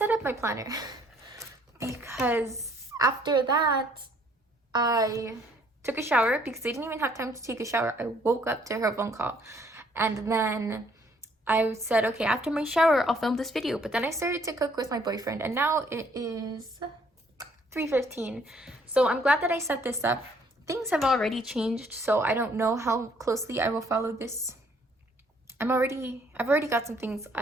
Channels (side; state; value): both; normal; correlation 0.64